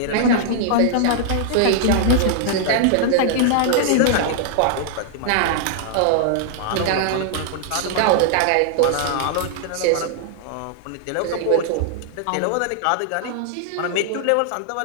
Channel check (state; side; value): different; both; correlation -0.01